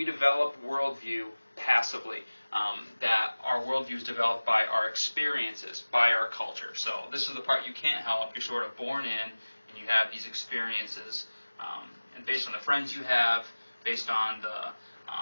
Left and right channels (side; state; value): both; inverted; correlation -1.00